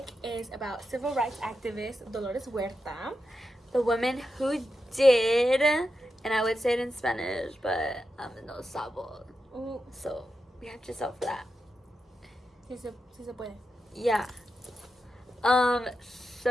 is about civil rights activist Dolores Huerta. The woman who did, and I would say it in Spanish, but no sabo. Ooh. So we have Giselle for that. Si se puede. Yeah.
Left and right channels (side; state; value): both; normal; correlation 0.88